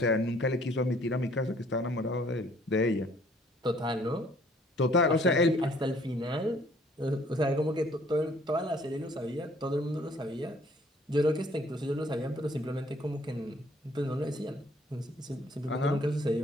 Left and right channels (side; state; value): both; normal; correlation 0.60